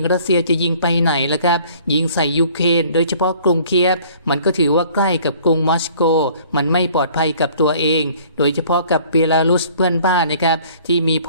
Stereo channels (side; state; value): both; inverted; correlation -0.54